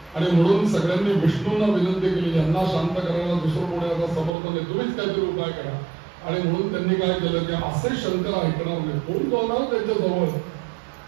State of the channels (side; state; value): left; drops out; at 4.4 s